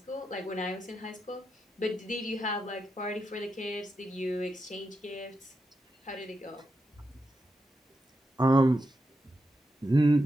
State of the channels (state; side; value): normal; both; correlation 0.86